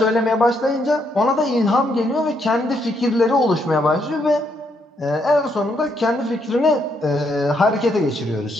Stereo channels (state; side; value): normal; both; correlation 0.75